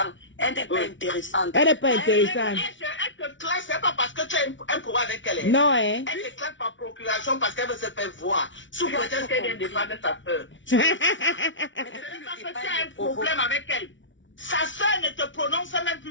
Elle n'est pas intéressante. Elle n'est pas intéressante. Elle te classe, c'est pas parce que tu as un pouvoir avec elle. Non, hein. Elle te classe par procuration parce qu'elle veut se faire voir. Sous prétexte qu'elle vient défendre sa soeur. Mais Parce que tu as un problème avec elle. Sa soeur ne te prononce même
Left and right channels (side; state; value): right; late; 0.55 ms